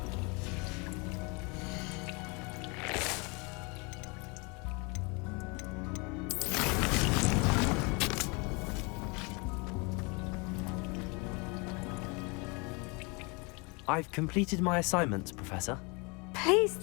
I've completed my assignments, Professor. Pleased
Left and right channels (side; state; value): right; quieter; 29.9 dB